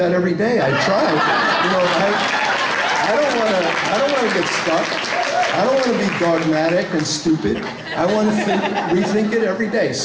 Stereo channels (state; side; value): identical; both; correlation 1.00